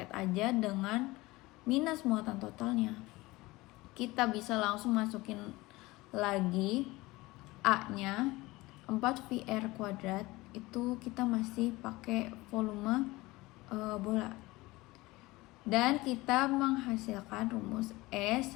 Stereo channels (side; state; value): right; quieter; 20.7 dB